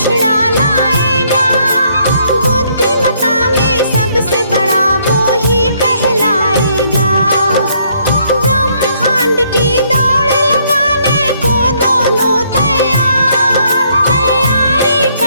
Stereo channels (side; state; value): both; inverted; correlation -0.69